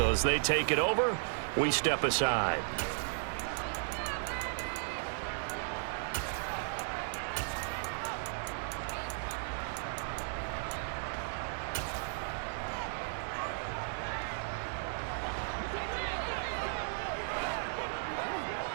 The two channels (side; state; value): left; silent; 54 dB below the other